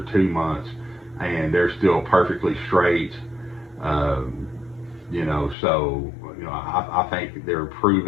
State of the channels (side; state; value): right; drops out; at 5.6 s